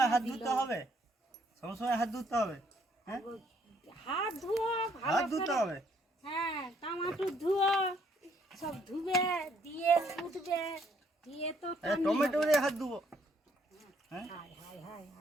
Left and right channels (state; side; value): normal; both; correlation 0.67